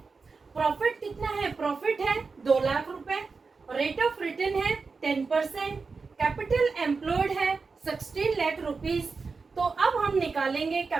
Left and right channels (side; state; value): left; quieter; 4.6 dB